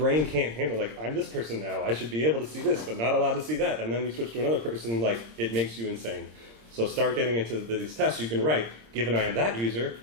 can't handle, like, I'm this person now, I should be able to see this, but not allowed to see that. And then you switch to another person, like, it makes you insane. So start getting into these tests. You can write, given I am that user,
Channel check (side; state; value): left; late; 26 ms